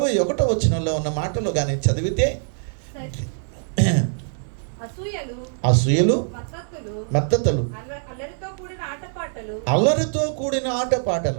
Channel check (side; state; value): left; silent; digital silence